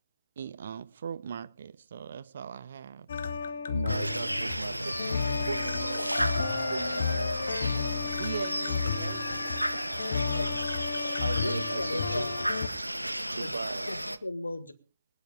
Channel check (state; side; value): inverted; both; correlation -0.87